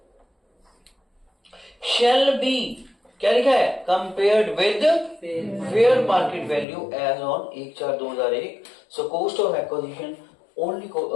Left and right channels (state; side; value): drops out; right; at 6.7 s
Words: shall be, क्या लिखा है, compared with fair market value as on 1/4/2001। So cost of acquisition only